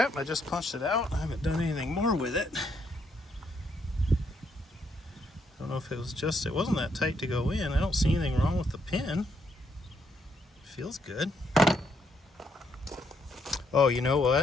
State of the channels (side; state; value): both; normal; correlation 0.74